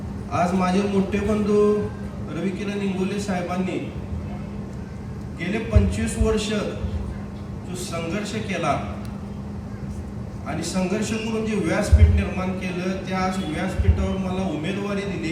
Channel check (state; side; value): identical; both; correlation 1.00